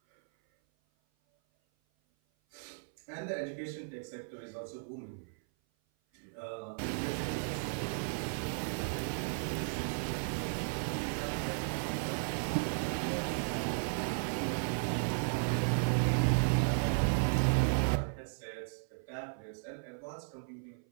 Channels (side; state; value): left; silent; 54 dB below the other